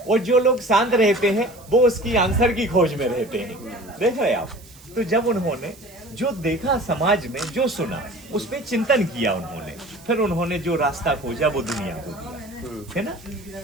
और जो लोग शांत रहते हैं वो उसकी आंसर की खोज में रहते हैं। देख रहे आप। तो जब उन्होंने जो देखा समाज में, जो सुना, उस पर चिंतन किया उन्होंने, फिर उन्होंने जो रास्ता खोजा वो दुनिया को दिया, है ना।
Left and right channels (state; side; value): noise; right; hiss, 23 dB below the sound